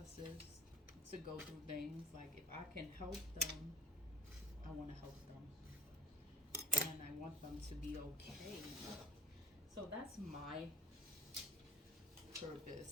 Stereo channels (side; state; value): both; normal; correlation 0.47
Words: to go through things. Like, if I can help them, I want to help them. And I want them to be okay. So that's my purpose.